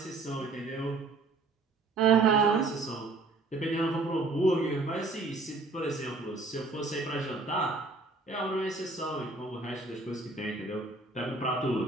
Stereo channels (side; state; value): left; quieter; 3.5 dB